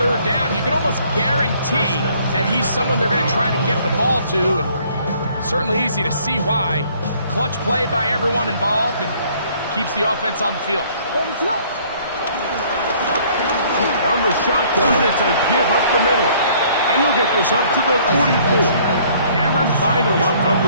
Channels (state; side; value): inverted; both; correlation -0.59